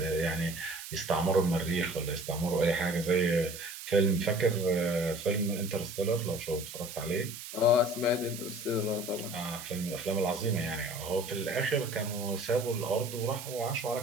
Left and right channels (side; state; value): right; noise; hiss, 11 dB below the sound